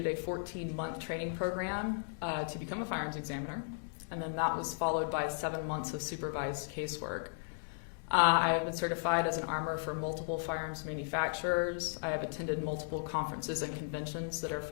a 14-month training program to become a firearms examiner, and then that was followed by 7 months of supervised casework. I have been certified as an armor for multiple firearms manufacturers. I have attended multiple conferences and conventions that are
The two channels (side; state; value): right; silent; digital silence